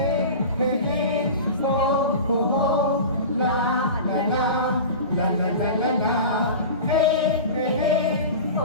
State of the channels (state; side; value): inverted; both; correlation -0.32